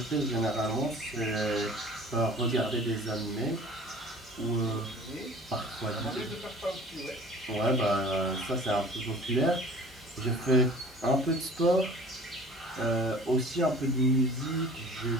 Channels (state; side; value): normal; both; correlation 0.46